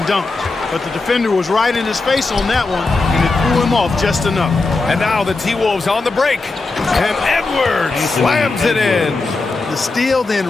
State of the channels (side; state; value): right; quieter; 3.6 dB